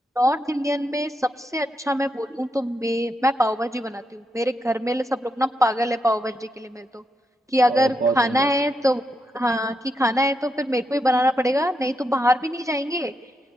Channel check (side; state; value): both; normal; correlation 0.82